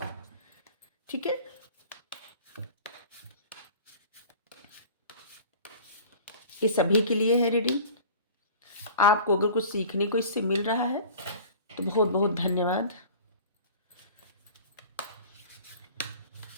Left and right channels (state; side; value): inverted; both; correlation -0.42